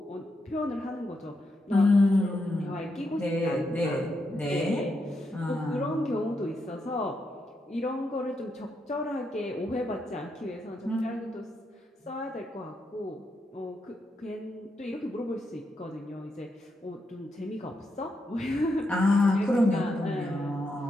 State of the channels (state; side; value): normal; both; correlation 0.82